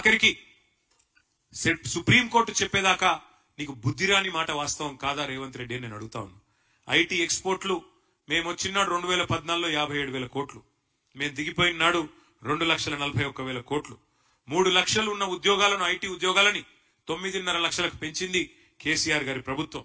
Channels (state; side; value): identical; both; correlation 1.00